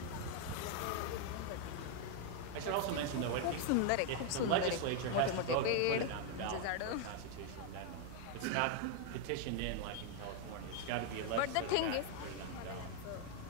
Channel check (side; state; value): both; different; correlation 0.01